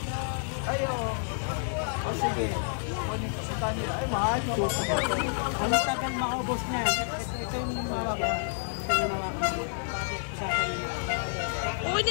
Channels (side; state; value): right; silent; digital silence